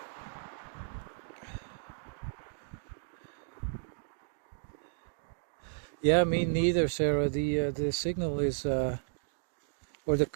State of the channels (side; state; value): left; silent; digital silence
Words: Yeah, me neither, Sarah. The signal is Or the